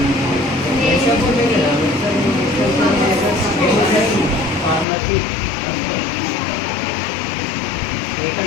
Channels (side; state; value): right; drops out; at 4.9 s